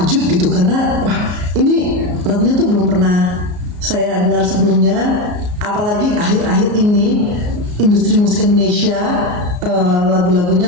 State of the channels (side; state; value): left; late; 34 ms